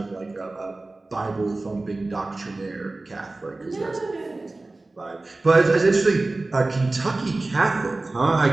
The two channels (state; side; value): quieter; left; 3.1 dB